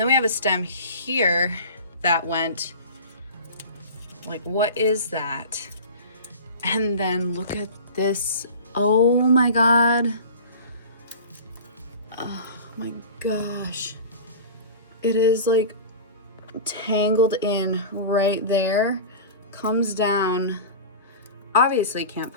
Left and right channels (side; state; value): both; inverted; correlation -0.35